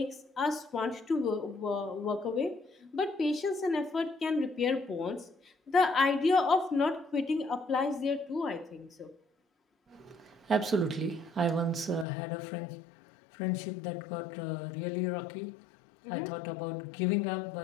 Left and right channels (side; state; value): right; drops out; at 12.1 s